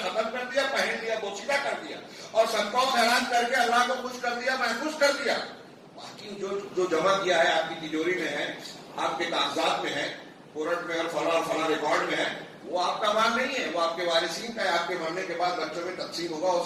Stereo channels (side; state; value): both; identical; correlation 1.00